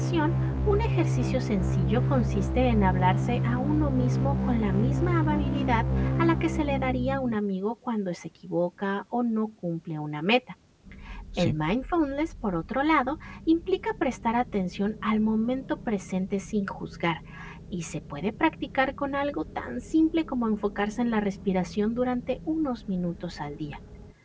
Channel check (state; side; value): identical; both; correlation 1.00